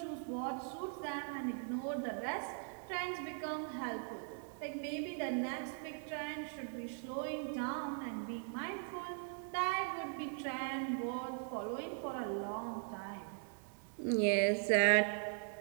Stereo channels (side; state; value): left; silent; 51 dB below the other